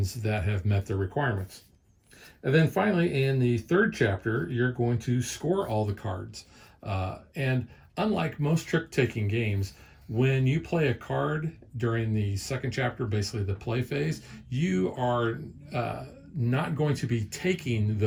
that have met the requirements. And then finally, in the 3rd chapter, you're going to score all the cards. And unlike most trick-taking games, when you play a card during the 2nd chapter, basically the play phase, you are not going to be taking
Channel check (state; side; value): identical; both; correlation 1.00